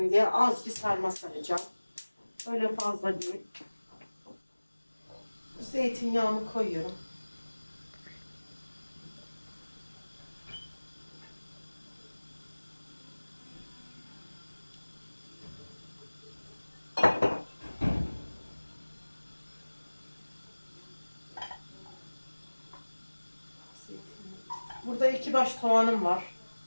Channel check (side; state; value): both; inverted; correlation -1.00